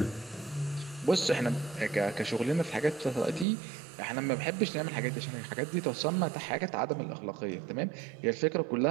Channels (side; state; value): left; drops out; at 3.5 s